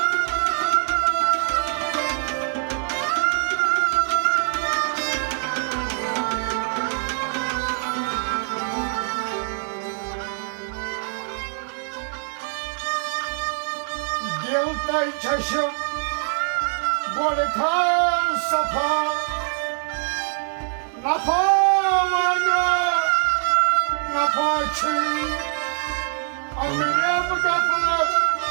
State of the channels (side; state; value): left; silent; digital silence